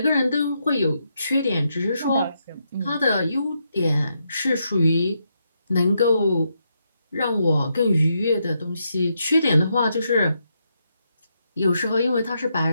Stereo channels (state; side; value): inverted; both; correlation -0.81